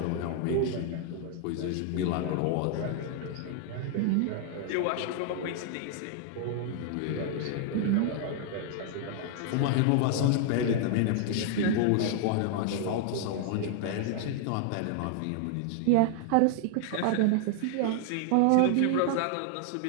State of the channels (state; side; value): different; both; correlation 0.00